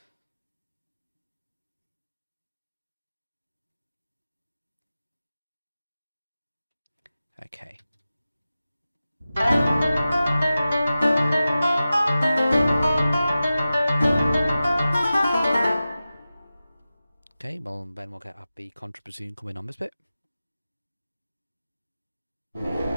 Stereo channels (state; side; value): inverted; both; correlation -0.94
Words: Okay. Okay, well, then we'll get the contrabassoon coming on this bit.